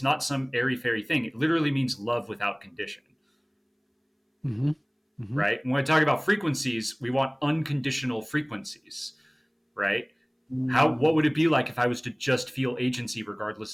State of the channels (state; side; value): identical; both; correlation 1.00